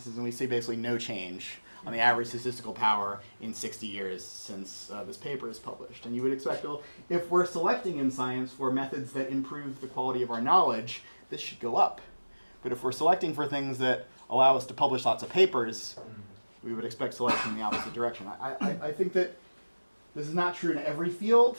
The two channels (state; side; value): inverted; both; correlation -1.00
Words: and we see basically no change on the average statistical power in 60 years since this paper is published. And you would expect, well, if we're selecting in science for methods that improve the quality of our knowledge, this should go up. But if we're selecting for things that allow us to publish lots of papers, we would expect selection in the opposite direction. I think that this is not true in every field,